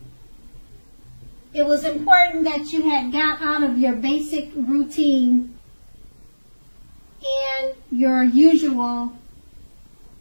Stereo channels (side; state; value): both; inverted; correlation -1.00